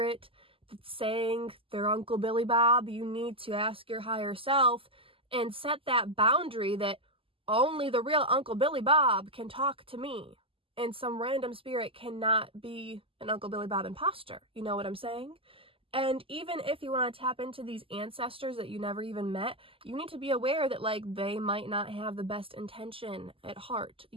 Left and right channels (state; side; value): late; left; 0.26 ms